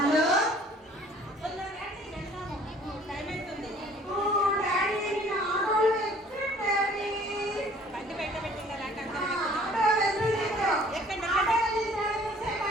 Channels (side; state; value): both; normal; correlation 0.54